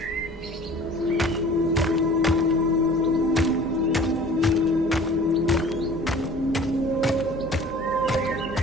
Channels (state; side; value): normal; both; correlation 0.46